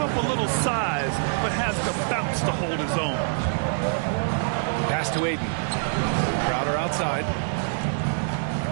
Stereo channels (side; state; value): left; silent; digital silence